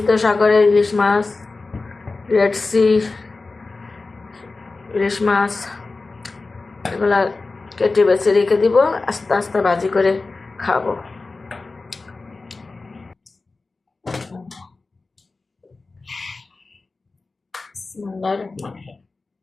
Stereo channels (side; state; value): right; quieter; 3.7 dB